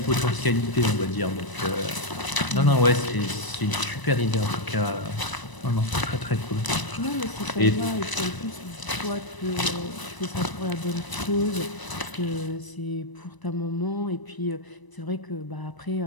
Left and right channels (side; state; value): right; late; 1.0 ms